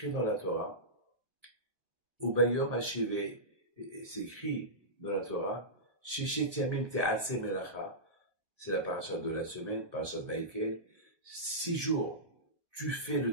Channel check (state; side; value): late; left; 1.2 ms